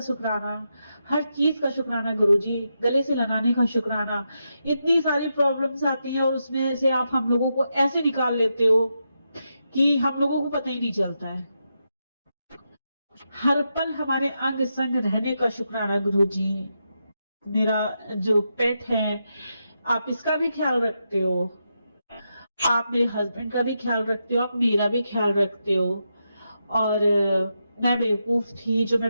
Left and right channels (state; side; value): inverted; both; correlation -0.85